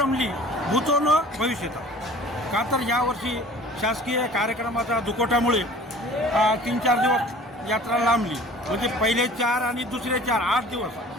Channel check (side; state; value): both; normal; correlation 0.47